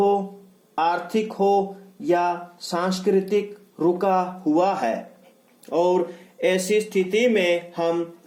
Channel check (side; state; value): both; identical; correlation 1.00